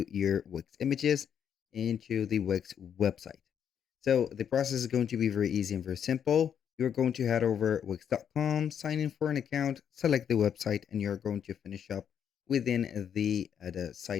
your Wix images into the Wix website. So the process is going to be very easy and very simple. You're going to head over wix.com, sign in for an account, select the website, and you're going to finish up within the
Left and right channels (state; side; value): quieter; right; 8.4 dB